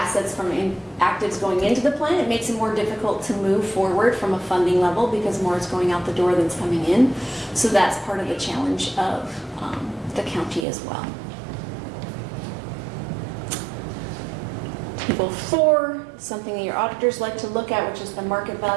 from actives going into the plan, it makes it more difficult to move forward from a funding level because more is going out the door than's coming in. So that's part of the challenge of the county as well. Table 4, something that your auditors like to look at, which is the market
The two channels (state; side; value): drops out; left; at 10.7 s